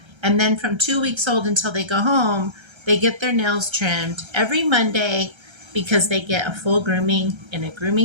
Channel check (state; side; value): late; left; 1.3 ms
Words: And then from 2 weeks old until they go home, they get their nails trimmed every Monday because they get a full grooming in a